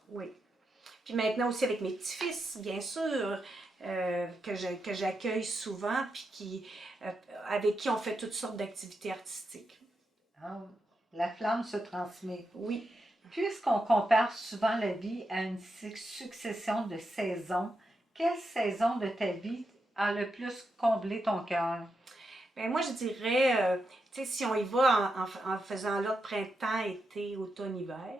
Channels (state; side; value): normal; both; correlation 0.85